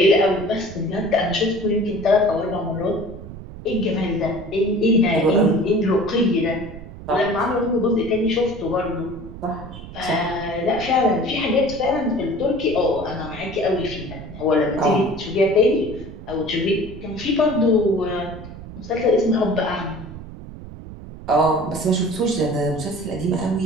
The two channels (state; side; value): noise; right; rumble, 13 dB below the sound